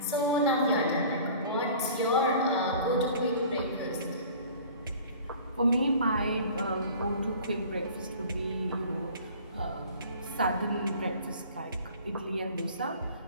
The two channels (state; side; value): inverted; both; correlation -0.46